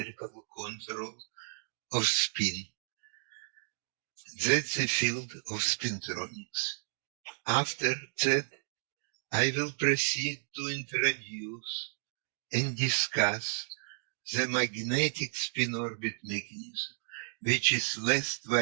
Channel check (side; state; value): left; silent; 56 dB below the other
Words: control of spin. That's the field of spintronics. After that, I will proceed to introduce and discuss the magnetic spin-orbit mechanism, which is less